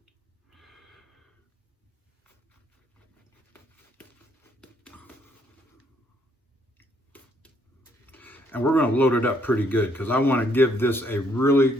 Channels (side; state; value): both; normal; correlation 0.70